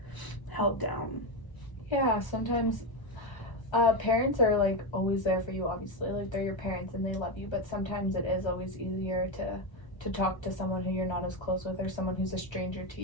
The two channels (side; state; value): right; late; 1.3 ms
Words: held down. Yeah, sometimes Parents are like always there for you, obviously. Like they're your parents and they love you, but sometimes it is always easier to talk to someone who you're not as close with or someone who's a stranger to